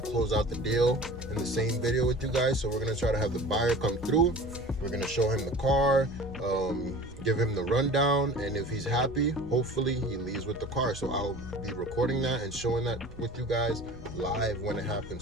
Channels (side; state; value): both; normal; correlation 0.40